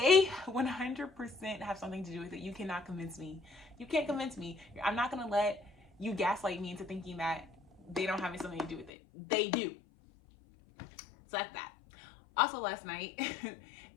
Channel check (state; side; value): drops out; right; at 8.9 s